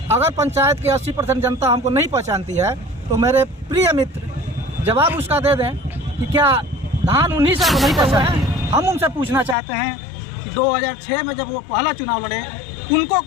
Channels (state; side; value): drops out; right; at 9.6 s